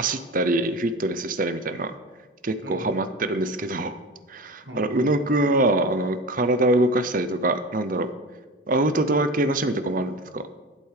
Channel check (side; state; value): both; normal; correlation 0.31